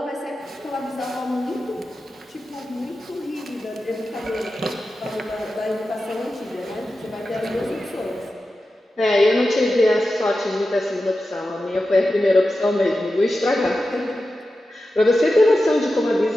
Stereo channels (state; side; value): normal; both; correlation 0.92